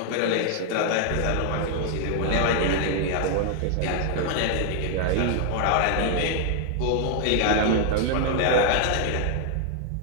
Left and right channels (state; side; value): different; both; correlation 0.00